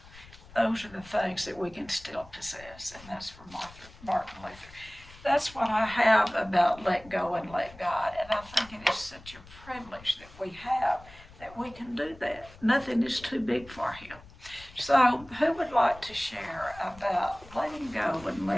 those are the things that we can still possess, and that's from Martin Luther. That's what I have about let go and let God, and I think it is such a privilege that we have, that we can do that. Nothing is too big for Him. So who would like to share about letting go and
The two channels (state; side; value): noise; left; rumble, 21 dB below the sound